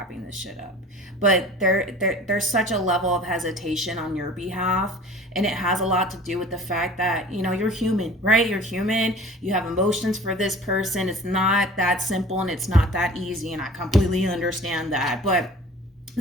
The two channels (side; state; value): both; normal; correlation 0.44